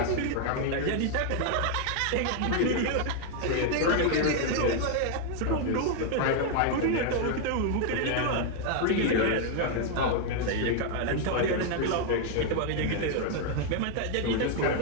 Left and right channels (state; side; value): different; both; correlation 0.00